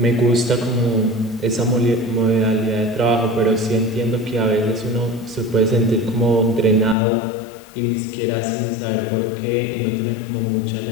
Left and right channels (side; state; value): right; drops out; at 7.0 s